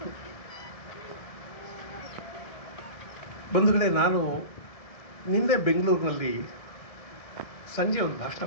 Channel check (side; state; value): right; late; 1.7 ms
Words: ಬಂಧುಗಳೇ, ನಾನು ನಿನ್ನೆ ಬೆಂಗಳೂರಿನಲ್ಲಿ ಸಂಜೆ ಒಂದು ಭಾಷಣ